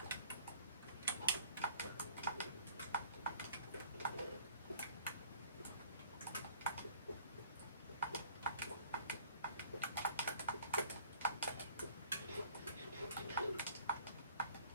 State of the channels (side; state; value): both; inverted; correlation -0.55